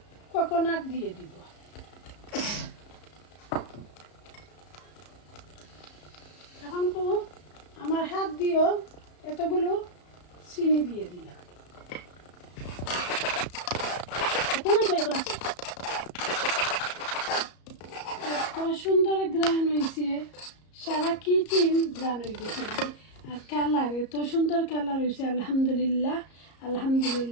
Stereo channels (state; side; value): late; right; 34 ms